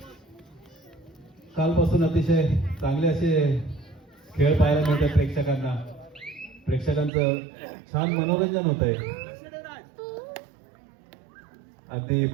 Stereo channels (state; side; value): drops out; left; at 7.1 s